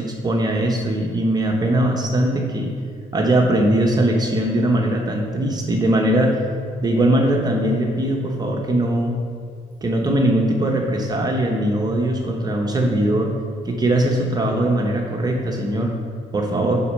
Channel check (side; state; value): both; normal; correlation 0.71